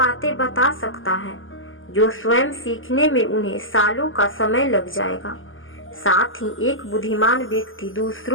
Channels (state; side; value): late; right; 0.58 ms